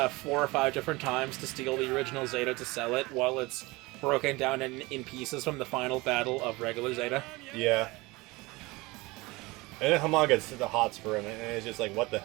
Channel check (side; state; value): left; quieter; 22.7 dB